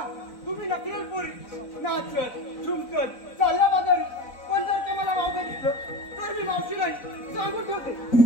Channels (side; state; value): right; late; 4.0 ms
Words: तुम्ही नकल पोरी नाचत झुमकत चालल्या बाजारी. पण जर ते मला वावगं दिसलं तर मी मावशी नाही सांगून ठेवते.